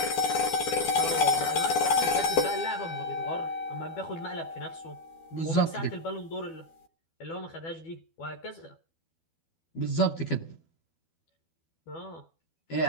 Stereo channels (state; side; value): late; right; 12 ms